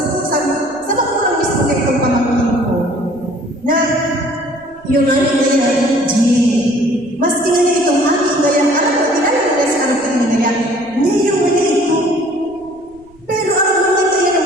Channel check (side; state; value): right; noise; rumble, 29 dB below the sound